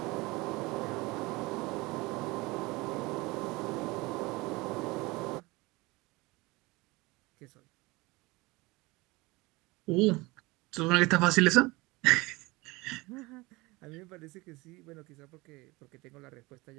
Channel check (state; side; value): quieter; left; 22.9 dB